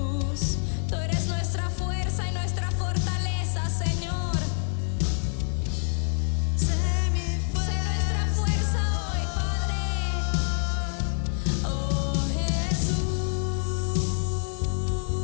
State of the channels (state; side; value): silent; right; 60 dB below the other